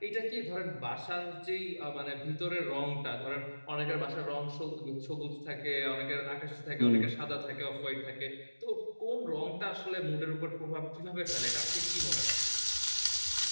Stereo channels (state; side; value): inverted; both; correlation -1.00